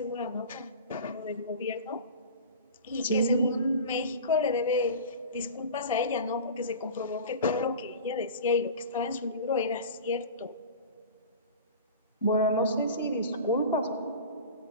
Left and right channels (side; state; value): both; inverted; correlation -0.35